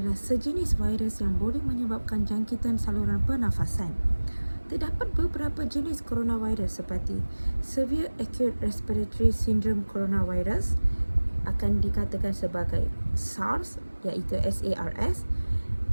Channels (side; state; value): both; inverted; correlation -1.00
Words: sejenis virus yang boleh menyebabkan jangkitan saluran pernafasan. Terdapat beberapa jenis coronavirus seperti Severe Acute Respiratory Syndrome Coronavirus akan dikatakan sebagai SARS iaitu SARS,